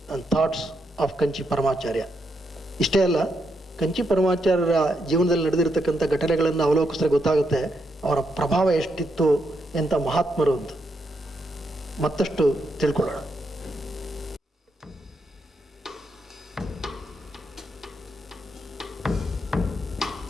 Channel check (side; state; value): both; normal; correlation 0.80